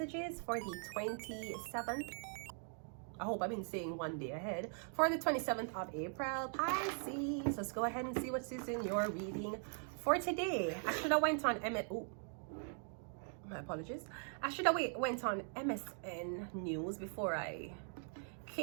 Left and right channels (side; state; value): left; silent; 50 dB below the other